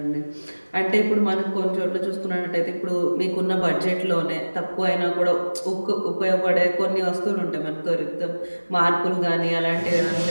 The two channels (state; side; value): inverted; both; correlation -1.00